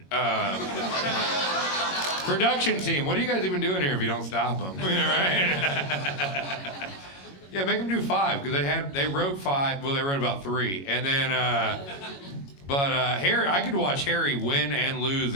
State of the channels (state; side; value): late; right; 22 ms